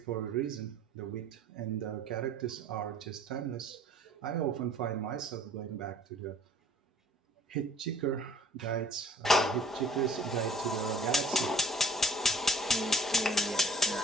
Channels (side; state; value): both; normal; correlation 0.54